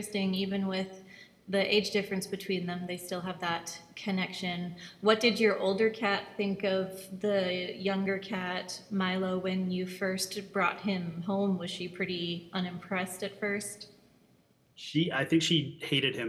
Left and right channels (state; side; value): identical; both; correlation 1.00